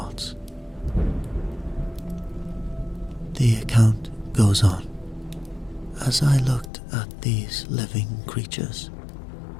The account goes on. As I looked at these living creatures,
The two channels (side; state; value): right; drops out; at 6.7 s